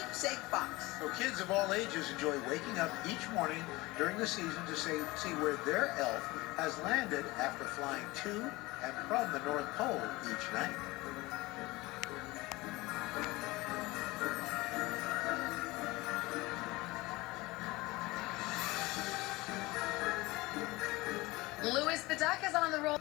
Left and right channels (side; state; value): right; quieter; 21.4 dB